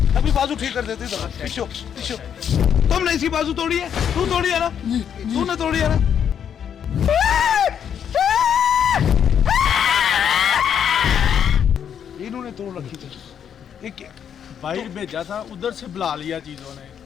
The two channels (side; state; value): right; quieter; 8.4 dB